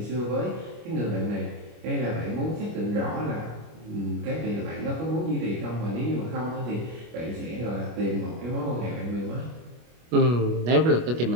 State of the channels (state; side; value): late; left; 25 ms